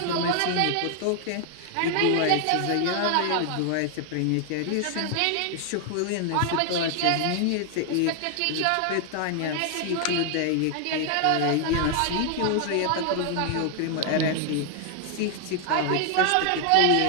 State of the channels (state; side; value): different; both; correlation 0.00